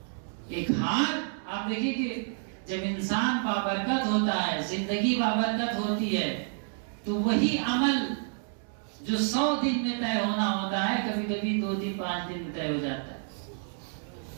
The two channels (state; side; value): silent; left; 58 dB below the other